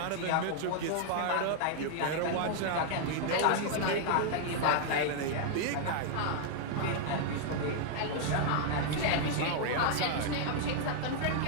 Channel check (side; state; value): both; different; correlation 0.00